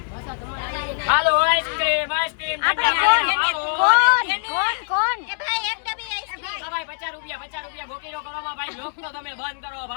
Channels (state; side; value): silent; right; digital silence